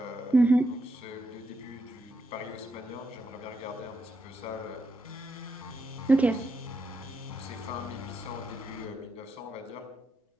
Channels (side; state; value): both; normal; correlation 0.83